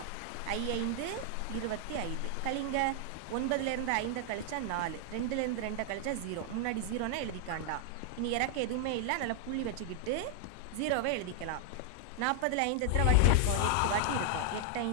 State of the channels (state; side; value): different; both; correlation 0.00